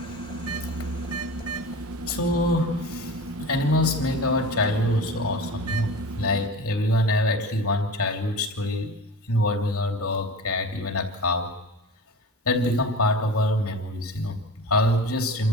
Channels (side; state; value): both; normal; correlation 0.32